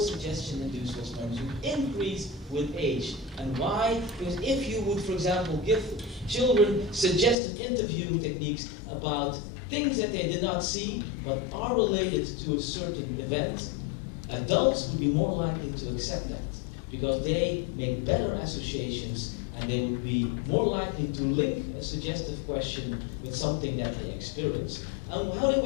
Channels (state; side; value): drops out; right; at 7.4 s